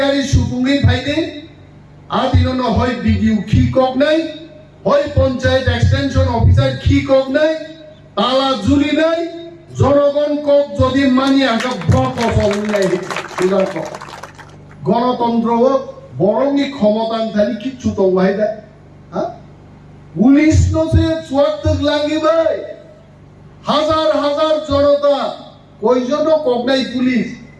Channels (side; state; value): both; identical; correlation 1.00